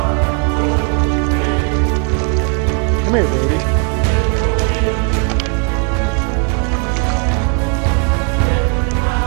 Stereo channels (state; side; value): quieter; left; 35.5 dB